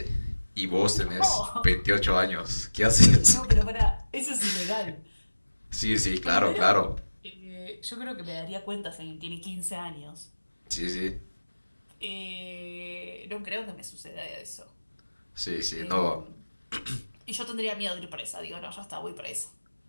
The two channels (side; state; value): both; inverted; correlation -1.00